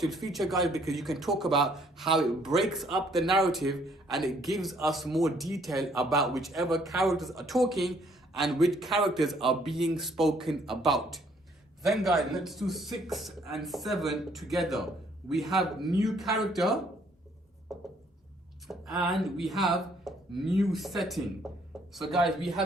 feature, guys, because you can talk about how it breaks up the narrative and it gives us more detail about whichever characters are talking and which characters are being spoken about. Then, guys, let's do 6 and 7 together. We have new character and we have new setting. So, guys, we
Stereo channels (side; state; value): both; normal; correlation 0.65